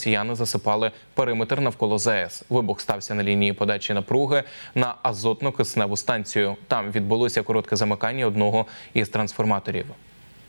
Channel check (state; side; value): inverted; both; correlation -1.00